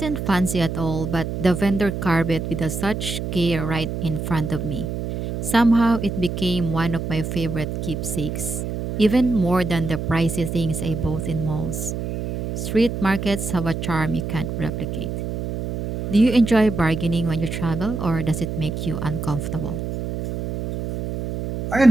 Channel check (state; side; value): noise; right; hum, 5 dB below the sound